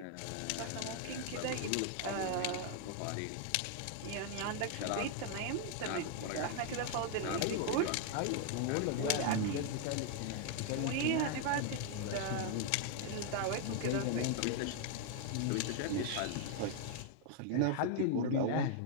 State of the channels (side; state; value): both; different; correlation 0.00